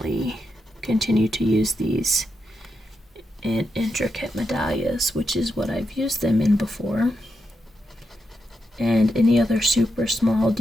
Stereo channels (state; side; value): normal; both; correlation 0.85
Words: continue to use these in intricate medallions, which is what I've used them in before, and any other super small